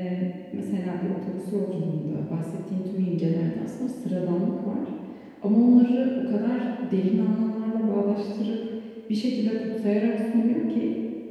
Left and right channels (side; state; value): both; identical; correlation 1.00